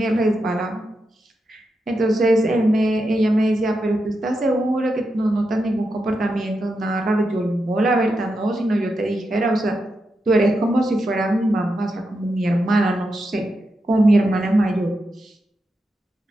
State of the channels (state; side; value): normal; both; correlation 0.86